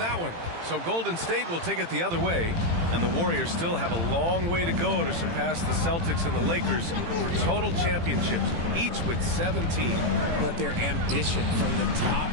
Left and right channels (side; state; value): left; late; 18 ms